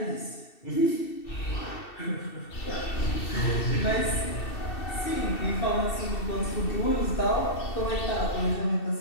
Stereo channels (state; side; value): late; right; 2.7 ms